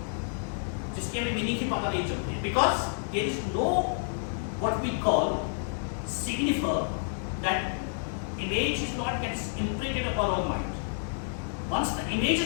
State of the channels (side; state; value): right; silent; digital silence